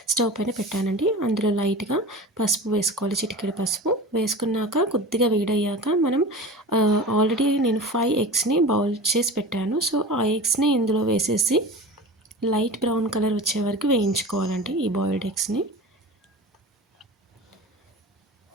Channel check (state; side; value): normal; both; correlation 0.33